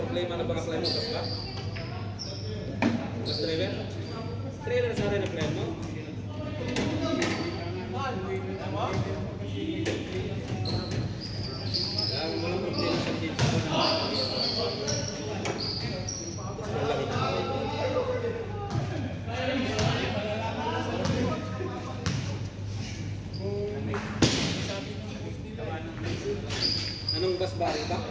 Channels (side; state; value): both; identical; correlation 1.00